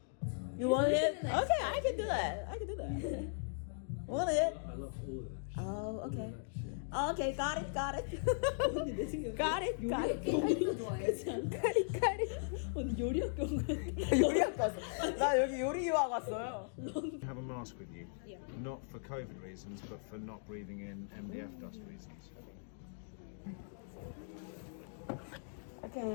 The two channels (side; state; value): right; silent; digital silence